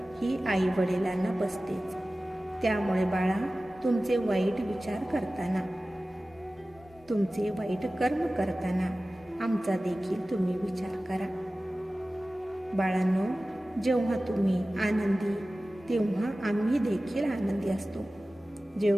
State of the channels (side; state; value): both; normal; correlation 0.96